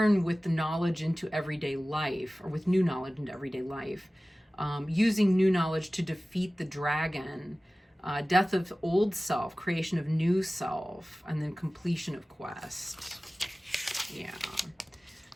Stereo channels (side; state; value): both; normal; correlation 0.97